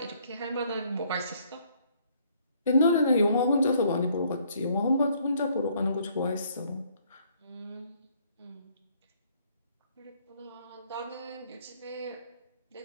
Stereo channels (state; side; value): inverted; both; correlation -0.65